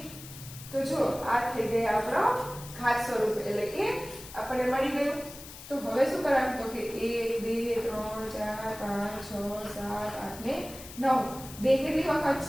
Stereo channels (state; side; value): noise; left; hiss, 15 dB below the sound